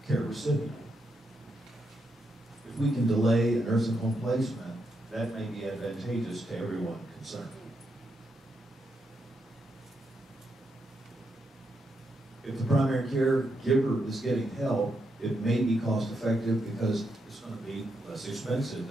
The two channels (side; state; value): both; normal; correlation 0.82